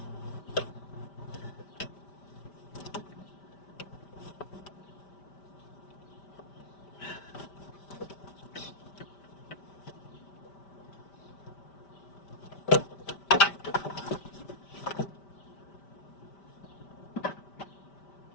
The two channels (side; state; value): right; late; 5.1 ms